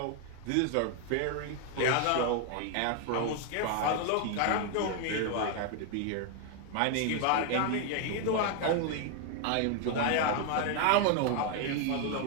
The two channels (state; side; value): different; both; correlation 0.01